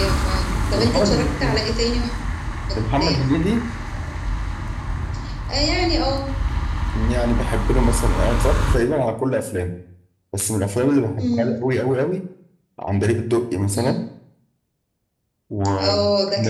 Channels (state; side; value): identical; both; correlation 1.00